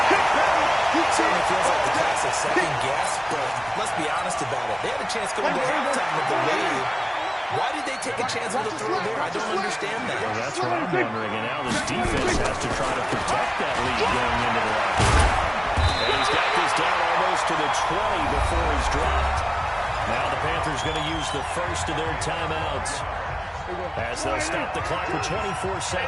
Certainly feels like the classic second guess, but let's be honest about it. They had a chance going to halftime with the lead. Why did they take a chance with a throw there? I don't understand that. Well, that's what I'm wondering. And now this defense has to try to protect that lead going into the locker room. And he's got this down almost to the 20 before he's dropped. Now the Panthers going to use the first of their timeouts as they'll stop the clock with 24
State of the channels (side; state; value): both; identical; correlation 1.00